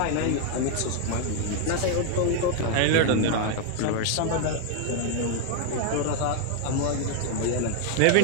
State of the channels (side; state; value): both; different; correlation 0.00